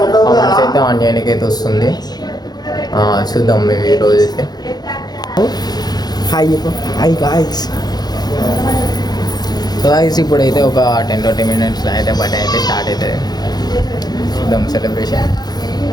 కామెంట్స్ అయితే ఆన్ చేయడానికి అయితే వస్తుంది. చూద్దాం మేము ఈరోజు అయితే. Hi guys. సో గాయ్స్, ఇప్పుడైతే ఒక 10-20 minutes అయితే బర్త్డే అయితే స్టార్ట్ అవుతుంది. చూద్దాం సెలబ్రేషన్.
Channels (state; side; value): late; right; 0.19 ms